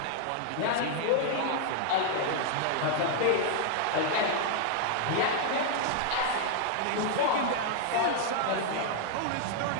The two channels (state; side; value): different; both; correlation 0.00